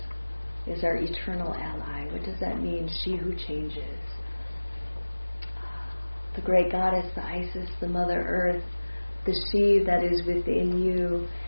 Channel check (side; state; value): both; inverted; correlation -1.00